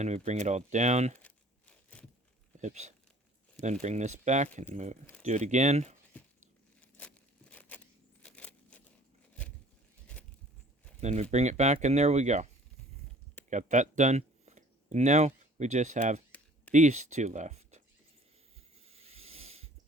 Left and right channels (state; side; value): normal; both; correlation 0.52